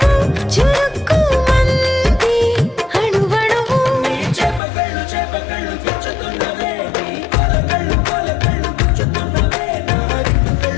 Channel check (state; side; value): drops out; right; at 4.6 s